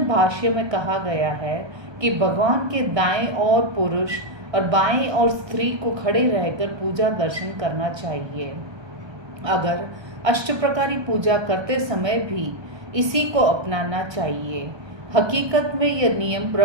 भाष्य में कहा गया है कि भगवान के दाएं ओर पुरुष और बाएं ओर स्त्री को खड़े रहकर पूजा दर्शन करना चाहिए। अगर अष्टप्रकारी पूजा करते समय भी इसी को अपनाना चाहिए। हकीकत में यह नियम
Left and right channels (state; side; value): late; left; 1.2 ms